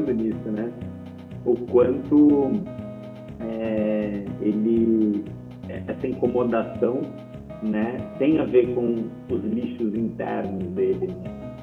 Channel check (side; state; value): both; identical; correlation 1.00